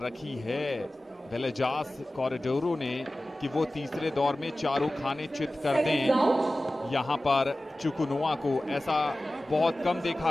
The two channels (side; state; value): both; normal; correlation 0.96